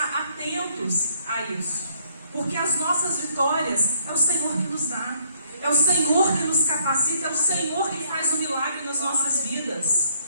atentos a isso. Porque as nossas vitórias é o Senhor que nos dá. É o Senhor que nos capacita. É o Senhor que faz o milagre nas nossas vidas.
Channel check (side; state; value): both; inverted; correlation -0.68